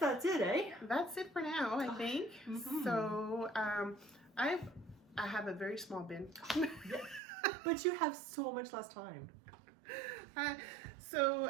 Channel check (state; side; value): drops out; left; at 7.2 s